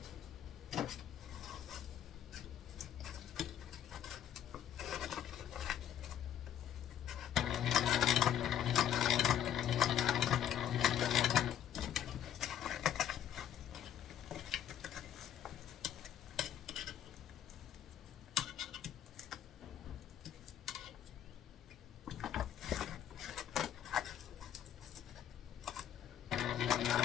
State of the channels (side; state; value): right; quieter; 10.1 dB